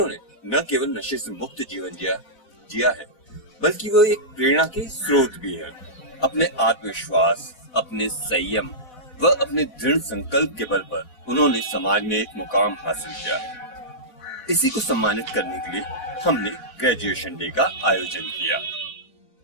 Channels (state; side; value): late; right; 4.0 ms